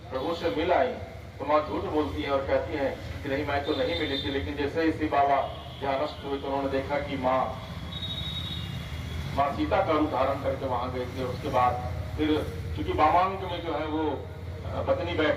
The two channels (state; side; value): identical; both; correlation 1.00